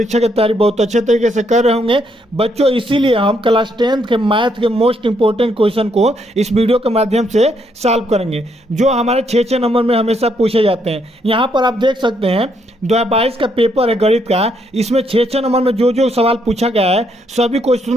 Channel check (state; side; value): normal; both; correlation 0.74